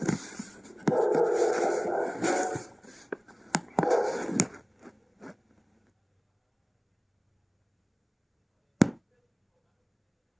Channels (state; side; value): identical; both; correlation 1.00